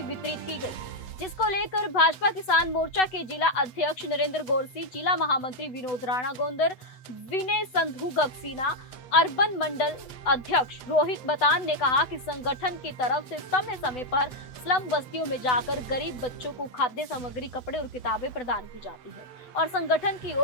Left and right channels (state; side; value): late; right; 7.9 ms